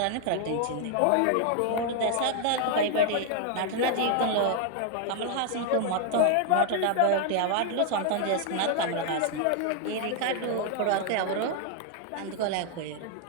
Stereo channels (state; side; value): different; both; correlation 0.00